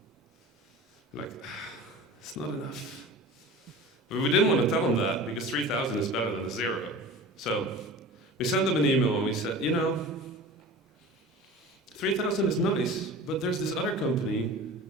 Like, it's not enough. But we didn't want to tell them that because 3,000 is better than a 0. So we sent them an email and we said, 3,000 is nice, but there's this other company.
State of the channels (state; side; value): normal; both; correlation 0.37